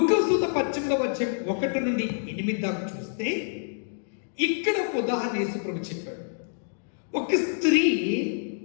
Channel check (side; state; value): right; silent; digital silence